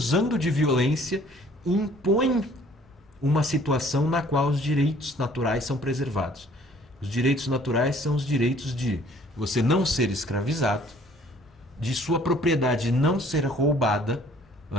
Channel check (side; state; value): both; normal; correlation 0.57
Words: de violência, impõe uma situação na qual os direitos naturais são preservados. Os direitos naturais são os direitos de você não ser escravizado, de sua propriedade não ser roubada,